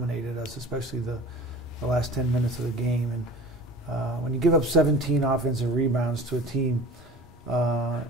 us, especially the last 10 minutes of the game. And when you give up 17 offensive rebounds to a team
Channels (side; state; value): both; normal; correlation 0.41